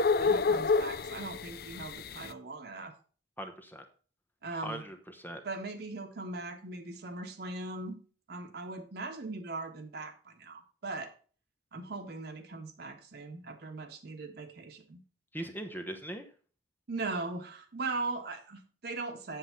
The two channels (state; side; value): normal; both; correlation 0.06